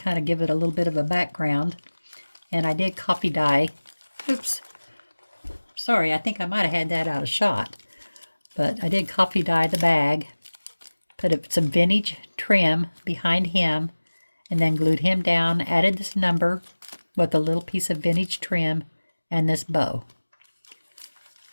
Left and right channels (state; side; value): inverted; both; correlation -1.00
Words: of give it a little bit of a background. And I did copy dye. Oops. Sorry, I think I might have had that out of shot. But I did copy dye the bag, put some vintage trim behind him, and then glued him down, added this number with a little piece of vintage trim and this bow.